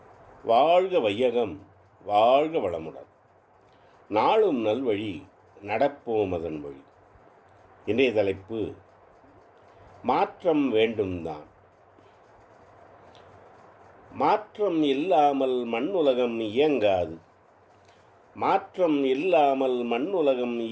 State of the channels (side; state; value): both; identical; correlation 1.00